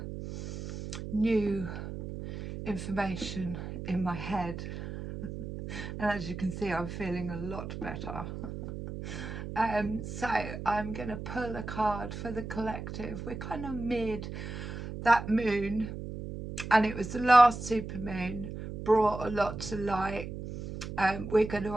new information in my head, and as you can see, I'm feeling a lot better. So I'm going to pull a card for the collective. We're kind of mid that moon, and it was the last super moon, brought a lot to light. We're going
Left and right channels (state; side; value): noise; right; hum, 8 dB below the sound